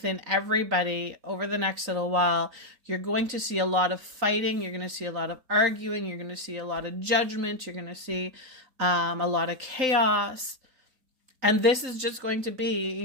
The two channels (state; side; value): late; left; 3.9 ms